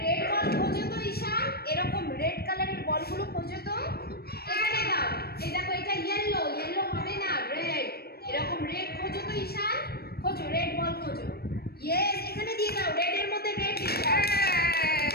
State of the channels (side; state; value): right; late; 0.46 ms